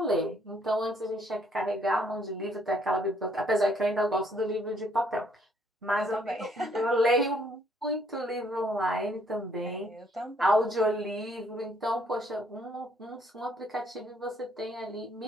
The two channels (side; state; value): both; normal; correlation 0.66